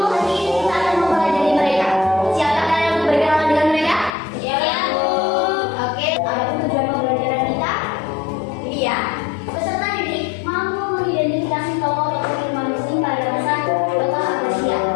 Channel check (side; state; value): right; drops out; at 4.1 s